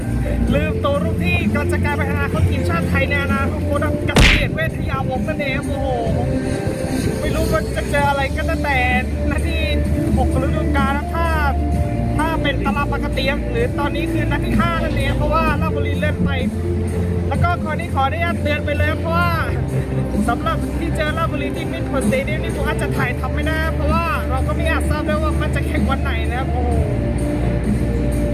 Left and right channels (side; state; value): both; identical; correlation 1.00